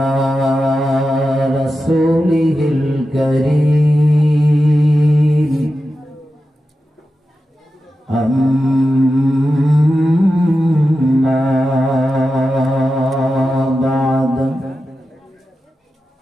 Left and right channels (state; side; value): normal; both; correlation 0.91